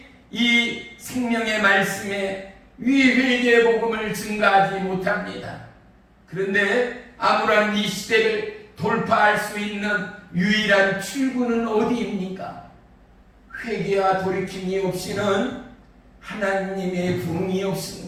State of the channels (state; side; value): identical; both; correlation 1.00